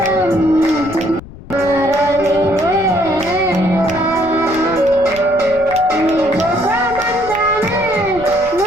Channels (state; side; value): noise; left; rumble, 17 dB below the sound